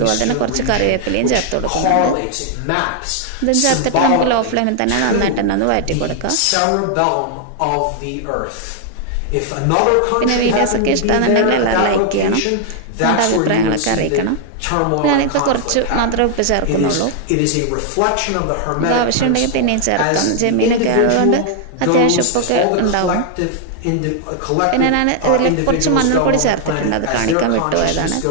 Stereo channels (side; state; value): both; different; correlation 0.00